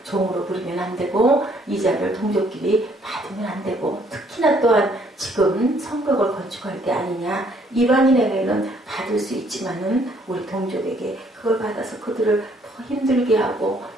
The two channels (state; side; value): normal; both; correlation 0.64